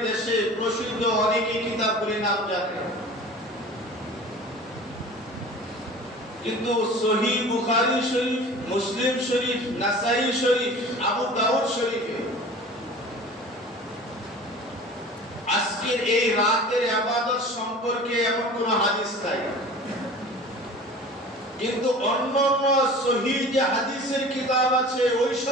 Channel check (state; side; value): normal; both; correlation 0.41